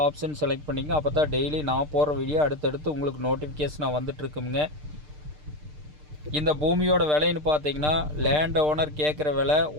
ஆப்ஷன் செலக்ட் பண்ணிங்க. அப்போ தான் டெய்லி நான் போகிற வீடியோ அடுத்தடுத்து உங்களுக்கு நோட்டிஃபிகேஷனாக வந்துட்டுருக்குங்க. இந்த பூமியோட விலைன்னு பார்த்தீங்கன்னா லேண்ட் ஓனர் கேட்குற விலை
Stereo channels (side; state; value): left; late; 6.6 ms